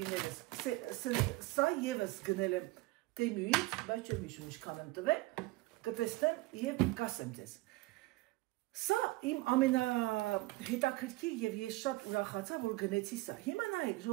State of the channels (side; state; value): left; quieter; 20.9 dB